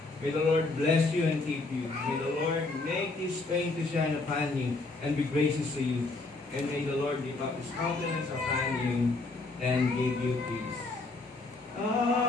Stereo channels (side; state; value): right; quieter; 3.4 dB